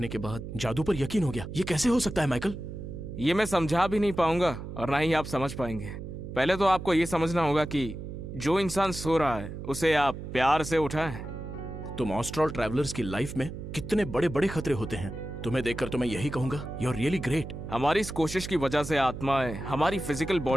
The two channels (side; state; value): right; noise; hum, 9 dB below the sound